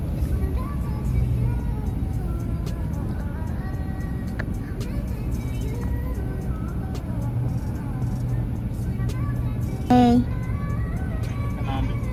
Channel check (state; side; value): identical; both; correlation 1.00